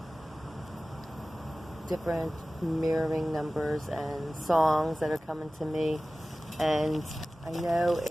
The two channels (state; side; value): normal; both; correlation 0.97